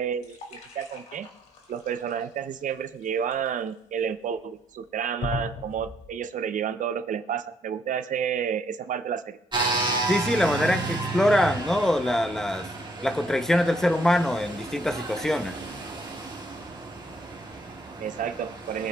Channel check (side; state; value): both; normal; correlation 0.68